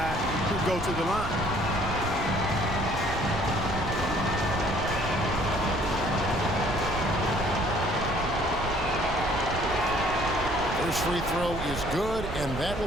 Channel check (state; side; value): noise; right; rumble, 7 dB below the sound